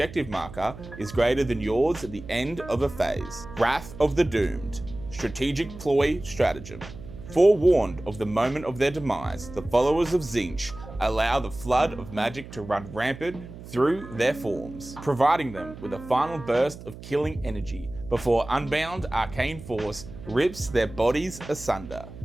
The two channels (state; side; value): noise; right; hum, 14 dB below the sound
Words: marker is greater than yours at the end of a phase. Wrath of the Doomed. Strategic Ploy Stratagem. Forewarned of the moment of their demise, the followers of Tzeentch allow the flood of magic to run rampant through their forms, providing them with a final burst of killing energy before unbound arcane force rips their bodies asunder.